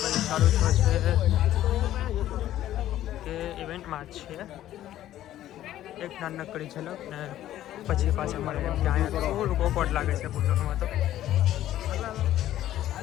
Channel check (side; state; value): right; quieter; 13.0 dB